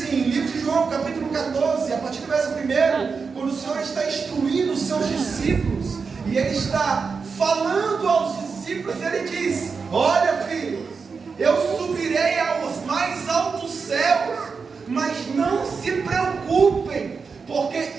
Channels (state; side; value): quieter; left; 5.2 dB